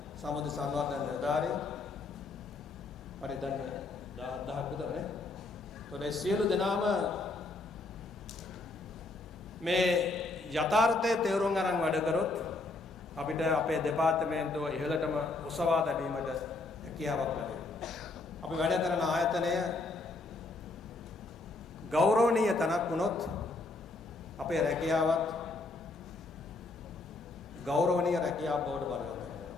සමුද්‍ර සංවර්ධන නිලධාරීන්. පරිදන්නේ 10000ක් විතරනේ. ඒතකොට සියලු දෙනාම මේ යථාර්ථයේ තේරුම් අරන් වැඩ කරොත් අපිට අපේ දෙපාර්තමේන්තුව ඉහළටම උසවා තැබීමට හැකියාවක් ලැබෙනවා. අපි වැඩ කරන ආයතනය ගෞරවනීය තැනක් වුණොත් අපේ රැකියාවත් ගෞරවනීය රැකියාවක් බවට පරිවර්තනය වෙනවා.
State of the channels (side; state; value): right; quieter; 3.4 dB